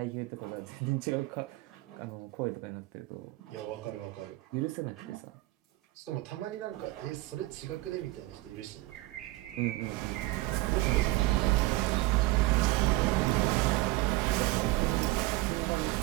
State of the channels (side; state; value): left; quieter; 19.4 dB